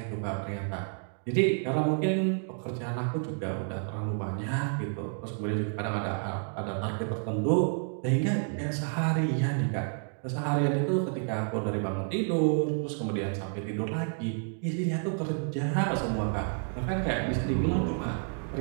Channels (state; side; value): silent; left; 58 dB below the other